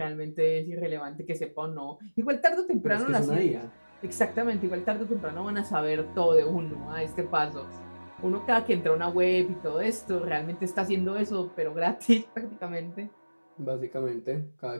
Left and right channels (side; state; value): both; inverted; correlation -1.00